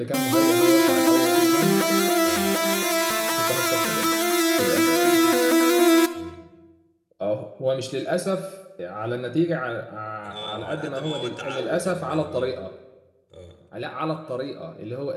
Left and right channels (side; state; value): both; identical; correlation 1.00